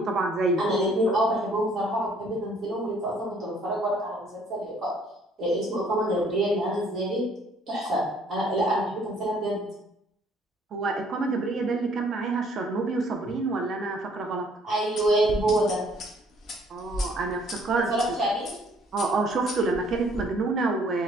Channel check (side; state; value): both; normal; correlation 0.61